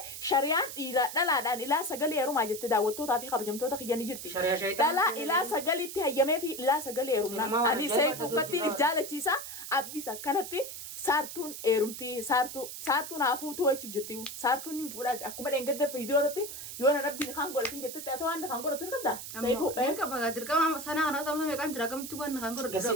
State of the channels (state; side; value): noise; right; hiss, 9 dB below the sound